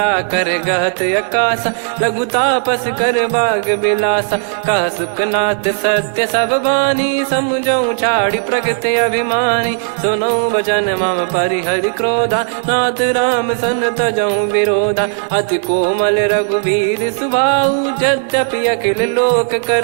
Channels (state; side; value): silent; left; digital silence